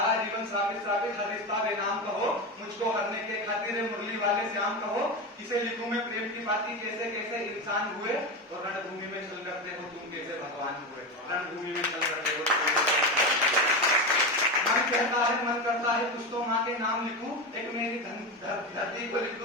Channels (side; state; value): both; normal; correlation 0.19